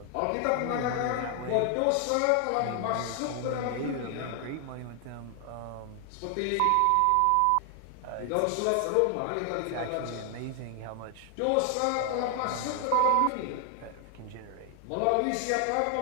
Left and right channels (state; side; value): different; both; correlation 0.00